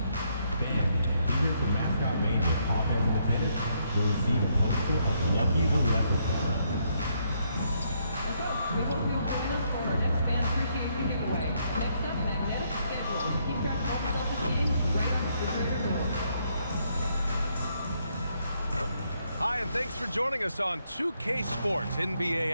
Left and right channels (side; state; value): both; inverted; correlation -0.74